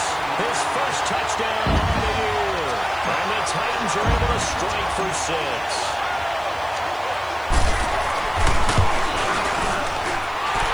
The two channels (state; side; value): noise; left; hiss, 26 dB below the sound